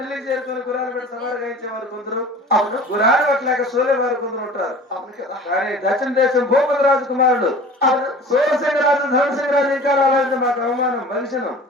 చేరుకుని గురాలు పెట్టి సవారు గాయించేవారు కొందరు. అవును. గురాలు పట్టలేక సోలేవారు కొందరు ఉంటారు. అవును కదా. కానీ దక్షిణ దేశం భూపతి రాజు కుమారుడు అవును. సోమసింగరాజు ధనసింగరాజు ఇంకా రావాలంటే మాకు అవమానం మనిషిను.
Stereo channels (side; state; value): both; normal; correlation 0.42